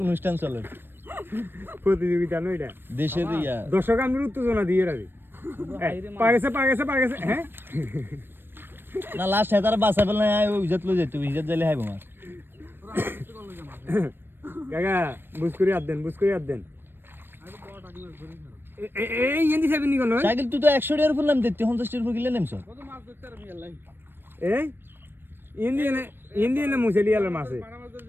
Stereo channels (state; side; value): late; left; 0.099 ms